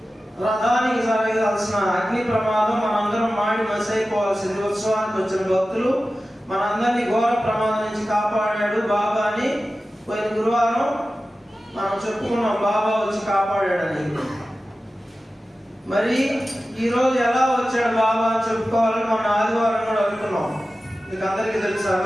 రథానికి జరగాల్సిన అగ్ని ప్రమాదం మనందరం మాడి మసైపోవాల్సింది. ఉత్సవానికి వచ్చిన భక్తులు మనందరినీ ఘోర ప్రమాదం నుంచి కాపాడాడు బాబా అని పోయిన గురువారం మనం చెప్పుకున్నాం. బాబా వచ్చి కాపాడాడని. మరి ఈ రోజు ఎలా వచ్చాడు బాబా అని చెప్పుకోవాలని మనం ఆదివారం కూడా అనుకున్నాం. మీకు అందరికీ తెలుసు. ఆ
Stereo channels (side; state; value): both; normal; correlation 0.95